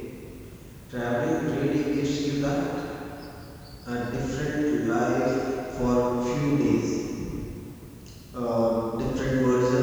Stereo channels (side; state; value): both; identical; correlation 1.00